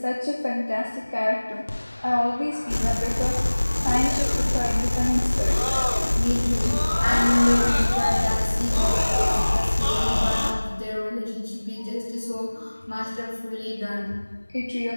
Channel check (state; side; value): inverted; both; correlation -1.00